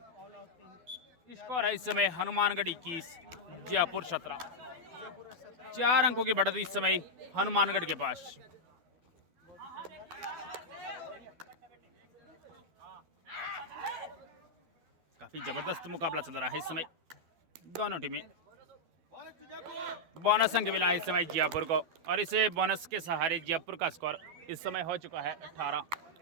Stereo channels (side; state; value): left; late; 12 ms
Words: स्कोर है इस समय हनुमानगढ़ 21 जयपुर 17। 4 अंकों की बढ़त इस समय हनुमानगढ़ के पास। काफी जबरदस्त मुकाबला चल रहा है इस समय दोनों टीमें। बोनस अंक मिला है इस समय जयपुर को और इसे बोनस के सहारे जयपुर का स्कोर इस समय हो चुका है 18